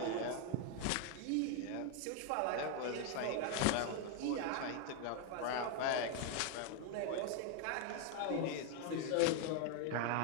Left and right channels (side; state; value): both; different; correlation 0.01